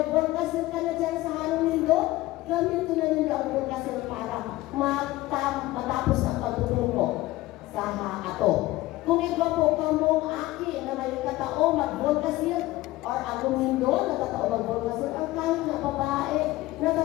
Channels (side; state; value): right; quieter; 17.9 dB